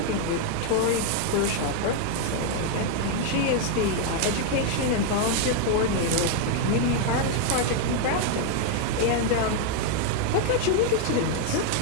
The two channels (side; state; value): both; different; correlation 0.00